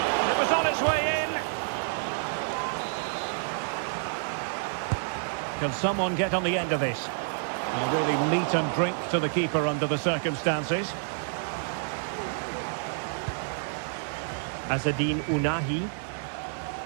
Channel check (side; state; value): left; silent; 59 dB below the other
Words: It was on its way in. Can someone get on the end of this? Really meat and drink to the keeper under the circumstances. Azzedine Ounahi.